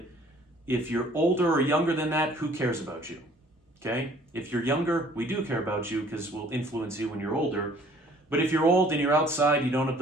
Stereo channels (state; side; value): normal; both; correlation 0.56